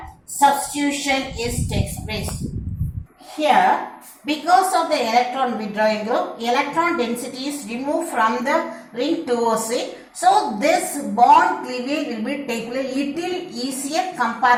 substitution takes place. Here because of the electron withdrawing group, electron density is removed from the ring towards it. So this bond cleavage will be taken a little easier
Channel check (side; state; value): both; identical; correlation 1.00